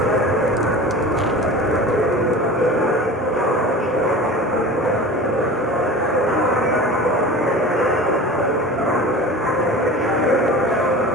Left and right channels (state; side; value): normal; both; correlation 0.36